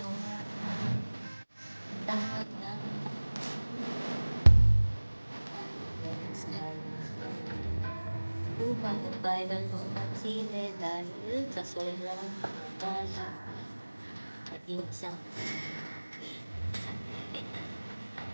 tanggap na viral po sine dahil sa sobrang bala at yung isang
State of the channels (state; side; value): inverted; both; correlation -1.00